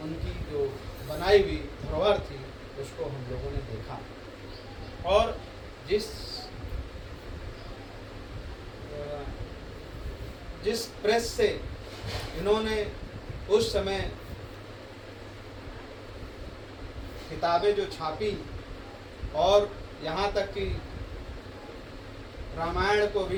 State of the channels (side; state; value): both; identical; correlation 1.00